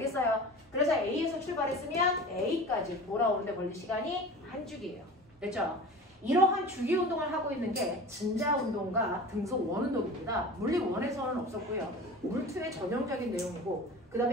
그래서 A에서 출발했으면 A까지 돌아오는 데 걸린 시간이 한 주기예요. 됐죠? 이러한 주기 운동을 하고 있는 게 진자 운동과 등소 원 운동입니다. 물리 1에서는 없었고요. 물 2의 전형적인 내용이고 그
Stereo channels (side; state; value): both; normal; correlation 0.36